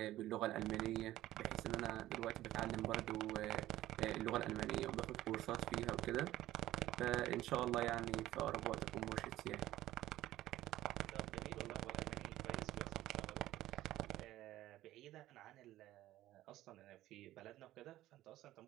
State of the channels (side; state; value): left; quieter; 14.8 dB